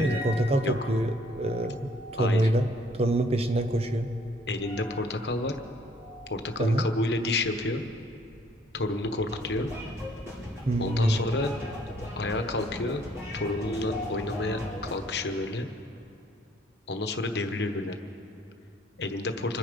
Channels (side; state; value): both; normal; correlation 0.62